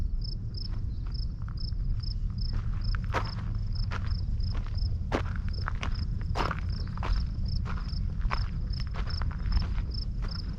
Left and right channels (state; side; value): identical; both; correlation 1.00